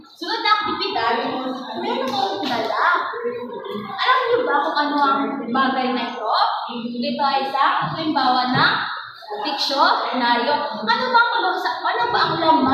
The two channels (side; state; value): both; identical; correlation 1.00